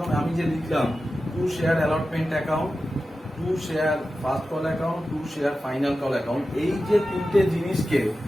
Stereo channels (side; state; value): both; normal; correlation 0.93